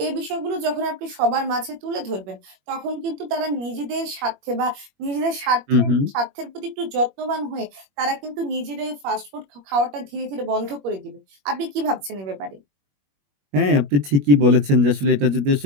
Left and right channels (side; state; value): left; late; 21 ms